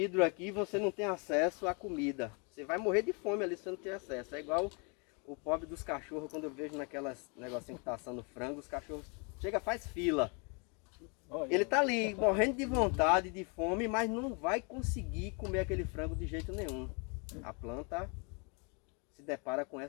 aqui e você não tem acesso à comida. Você vai morrer de fome ali se você não tem acesso. É igual o pobre dos cachorros, quando eu vejo naquelas negocinho que tá assando frango, os cachorros chega, faz fila. Ele tá ali morrendo de vontade, de fome, mas não vai conseguir comer aquele frango de jeito nenhum. A planta se depara com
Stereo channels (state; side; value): quieter; right; 34.3 dB